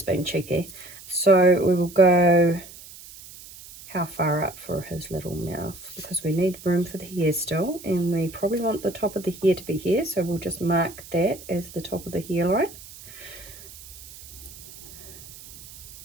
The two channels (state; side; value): noise; right; hiss, 17 dB below the sound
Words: being cheeky. So we will go how far up for his little mouth, because we need room for the hair still, and we probably want the top of the hair to be here, so we'll just mark that as the top of the hairline.